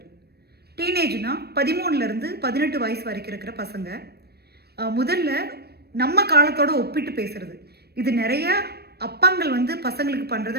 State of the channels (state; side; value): late; left; 0.47 ms